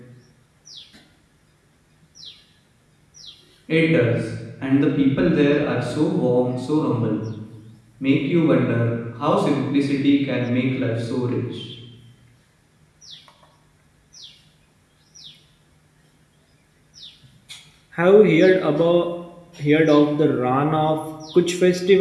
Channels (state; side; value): identical; both; correlation 1.00